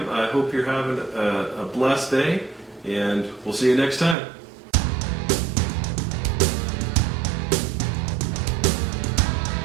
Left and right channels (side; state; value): left; drops out; at 4.2 s